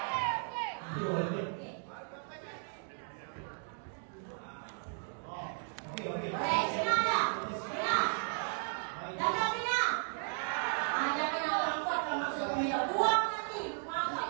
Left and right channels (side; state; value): left; silent; 54 dB below the other